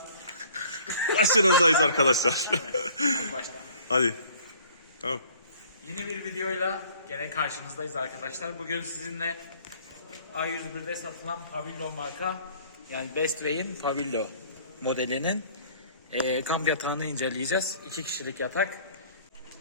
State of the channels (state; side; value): inverted; both; correlation -0.54